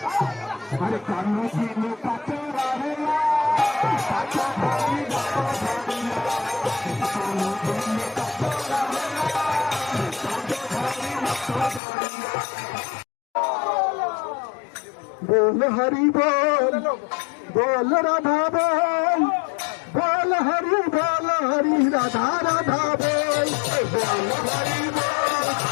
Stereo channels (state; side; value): drops out; right; at 11.8 s